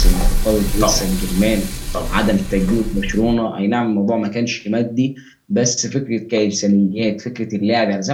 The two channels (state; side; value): identical; both; correlation 1.00